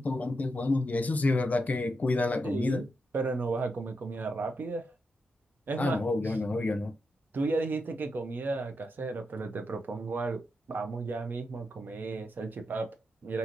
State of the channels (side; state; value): both; normal; correlation 0.85